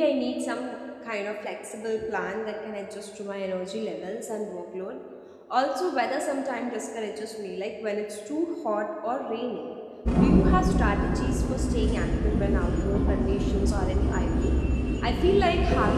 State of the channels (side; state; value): both; identical; correlation 1.00